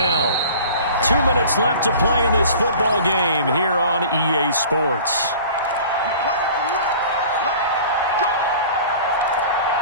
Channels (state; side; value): inverted; both; correlation -0.43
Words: 2 minutes left to play in this football game here on EA Sports.